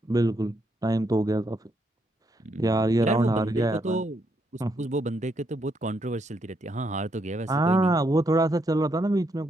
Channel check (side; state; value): both; normal; correlation 0.77